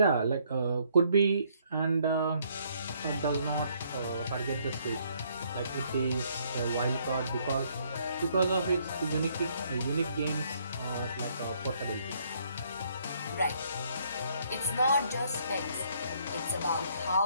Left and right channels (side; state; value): both; inverted; correlation -0.67